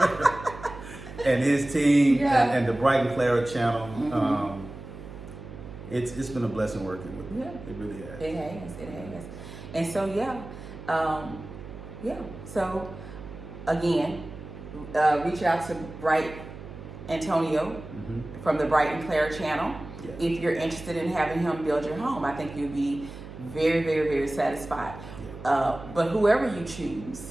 and his team and the BRIGHT&CLARA channel. It's been a blessing working with you. Yeah. It really has. It has. And so so again, reach out to Anthonio from the BRIGHT&CLARA channel. Yeah. If you're interested in having him build your home, I think you'll be very, very, very satisfied. Yeah. But whoever you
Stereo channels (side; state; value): right; noise; hum, 13 dB below the sound